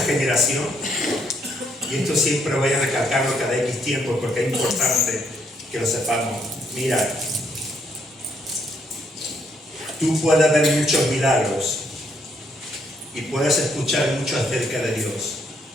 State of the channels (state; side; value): normal; both; correlation 0.72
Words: y esto siempre voy a recalcarlo cada X tiempo porque es importante que lo sepamos. Mira, tú puedes ver muchos milagros y puedes escuchar mucho acerca de Dios.